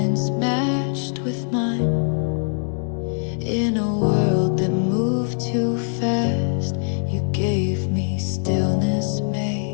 matched with mine. In a world that moved too fast, you gave me stillness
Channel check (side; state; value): right; silent; 64 dB below the other